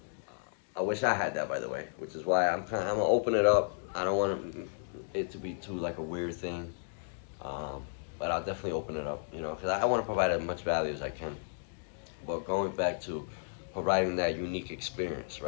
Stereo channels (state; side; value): silent; right; digital silence